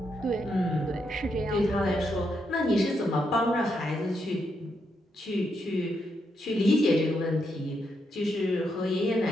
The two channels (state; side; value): normal; both; correlation 0.80